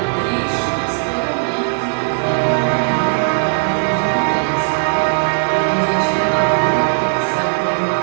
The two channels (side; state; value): left; silent; digital silence